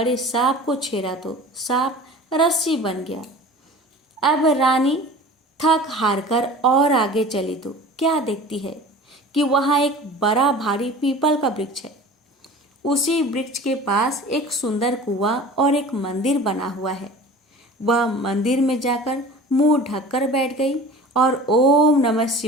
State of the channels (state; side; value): normal; both; correlation 0.40